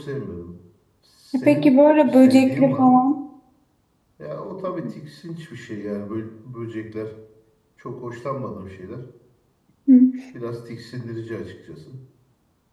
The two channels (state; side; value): identical; both; correlation 1.00